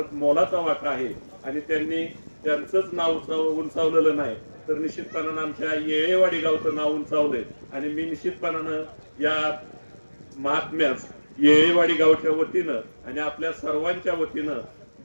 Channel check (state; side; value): inverted; both; correlation -1.00